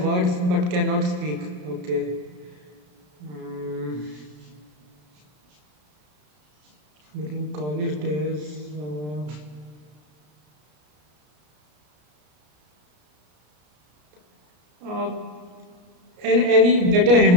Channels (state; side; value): late; left; 33 ms